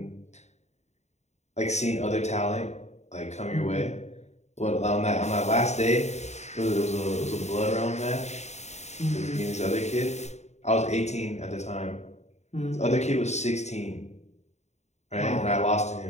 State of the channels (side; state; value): right; late; 0.32 ms